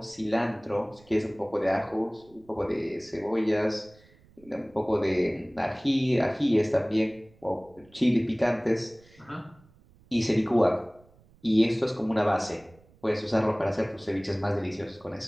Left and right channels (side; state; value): right; noise; rumble, 28 dB below the sound